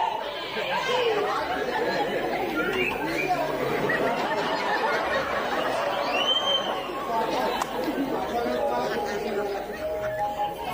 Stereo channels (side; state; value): both; identical; correlation 1.00